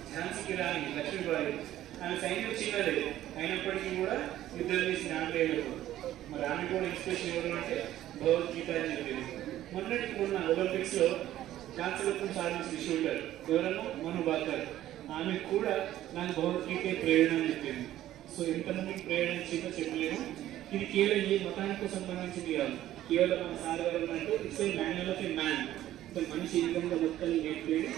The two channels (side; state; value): left; quieter; 13.4 dB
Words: ఝాన్సీ రాణి లక్ష్మీబాయి, ఆమె సైన్యం చిన్నది అయినప్పటికీ కూడా యుద్ధం చేసిన ఆంగ్లేయులు. మరి ఆమె కూడా ఇన్స్పిరేషన్ ఎవరు అంటే భగవద్గీత అని చెప్పేది. మొన్నటికి మొన్న ఒలింపిక్స్లో కాంస్యరత్నం సాధించిన షూటర్ ఎవరన్నా మను భాకర్, ఆమె కూడా నాకు భగవద్గీత ప్రేరణ అని చెప్పింది. సో ఎంతమందికి ప్రేరణ ఇచ్చిందో చెప్పలేము. ఇది కేవలం ఈ మతానికి సంబంధించింది కాదు, కేవలం మన సాధారణ అంటే it's a manual of a man. మనిషి ఈ విధంగా మొత్తం నేర్పేది